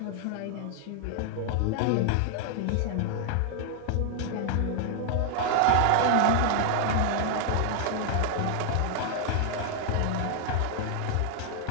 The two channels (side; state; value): both; different; correlation 0.00